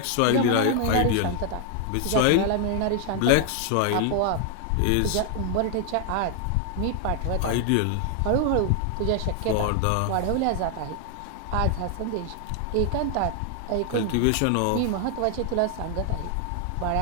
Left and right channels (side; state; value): both; different; correlation 0.00